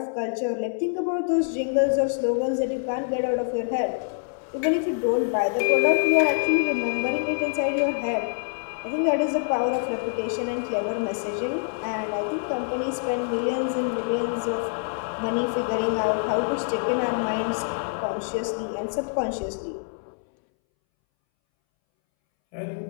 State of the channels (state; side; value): silent; right; 61 dB below the other